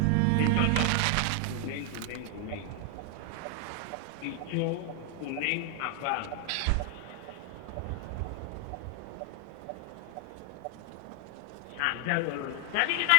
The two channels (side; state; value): both; different; correlation 0.00